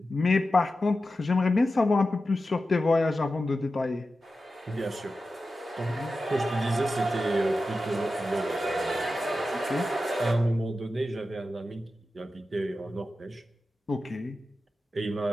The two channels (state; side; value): normal; both; correlation 0.92